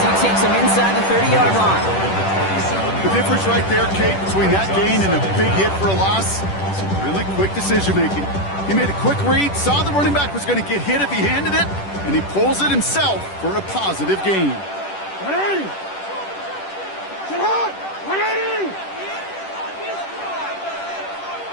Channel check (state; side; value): late; right; 10 ms